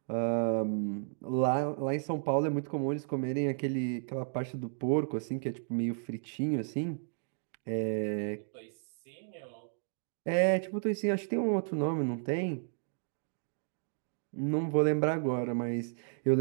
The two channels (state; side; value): silent; left; digital silence